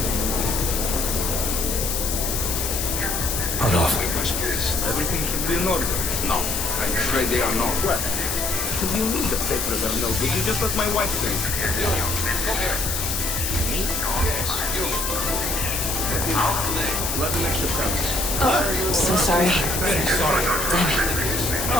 Hold off. Everything should be in order. No, I'm afraid they are not. What? You need the papers are no good. You just let my wife sing. Come here. Me? Yes, you. Let the next come. Oh, so sorry. Very sorry. Damn it.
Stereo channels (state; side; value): noise; left; hiss, 1 dB below the sound